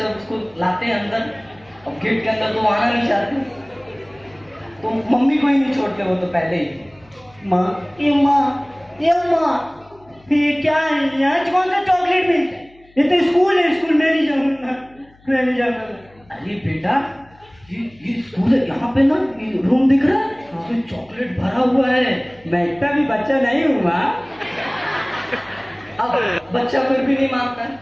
उसको लाते हैं अंदर। अब गेट के अंदर तो वो आना नहीं चाहते, तो मम्मी को ही नहीं छोड़ते वो तो पहले ही। माँ ये क्या है, यहाँ कौन सा चॉकलेट मिलता है? ये तो स्कूल है, स्कूल में नहीं जाऊंगा, मैं नहीं जाऊंगा। अरे बेटा ये स्कूल है, यहाँ पे ना ये रूम दिख रहा है, उसमें चॉकलेट भरा हुआ है। मैं इतना भी बच्चा नहीं हूँ माँ। अब बच्चा फिर भी नहीं मानता है,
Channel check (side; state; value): left; noise; hum, 29 dB below the sound